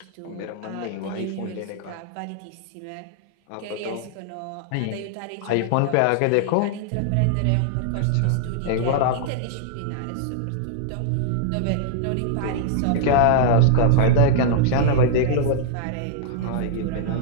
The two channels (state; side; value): different; both; correlation -0.01